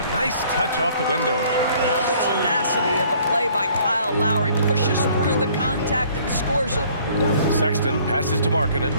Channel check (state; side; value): inverted; both; correlation -0.58